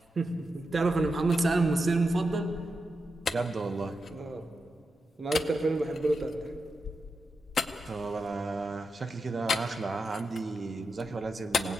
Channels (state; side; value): normal; both; correlation 0.88